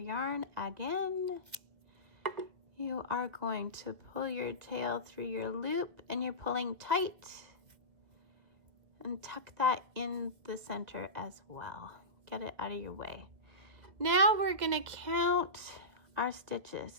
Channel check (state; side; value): late; left; 2.0 ms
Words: again. You are going to pull your tail through your loop, and you're pulling tight, and tuck that in the center as well. Get it out of your way. Now we're going to count our stitches.